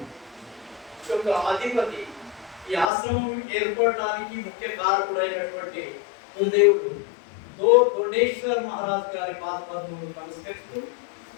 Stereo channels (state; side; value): drops out; right; at 2.9 s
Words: యొక్క అధిపతి, ఈ ఆశ్రమం ఏర్పడడానికి ముఖ్య కారకుడైనటువంటి గురుదేవుడు దొండేశ్వర్ మహారాజ్ గారి పాదపద్మములకు నమస్కరిస్తూ,